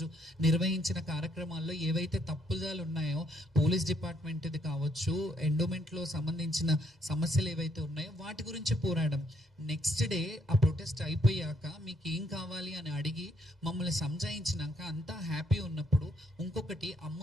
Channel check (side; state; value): both; normal; correlation 0.71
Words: నిర్వహించిన కార్యక్రమాల్లో ఏవైతే తప్పుదాలు ఉన్నాయో, పోలీస్ డిపార్ట్మెంట్ది కావచ్చు, ఎండోమెంట్లో సంబంధించిన సమస్యలు ఏవైతే ఉన్నాయో వాటి గురించి పోరాడం. నెక్స్ట్ డే ఆ ప్రొటెస్ట్ అయిపోయాక మీకు ఏం కావాలి అని అడిగి మమ్మల్ని సంజాయించినాక అంతా హ్యాపీ ఉన్నప్పుడు ఇంకొకటి,